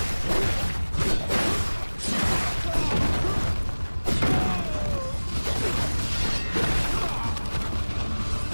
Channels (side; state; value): both; inverted; correlation -1.00